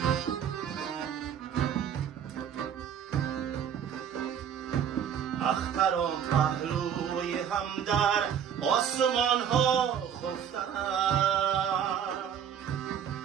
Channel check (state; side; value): quieter; left; 8.6 dB